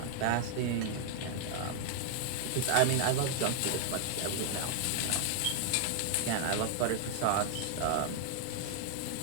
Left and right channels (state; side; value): different; both; correlation 0.00